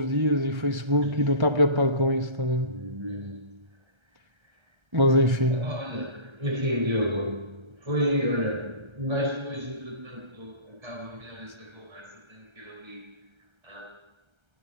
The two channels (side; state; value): left; late; 1.3 ms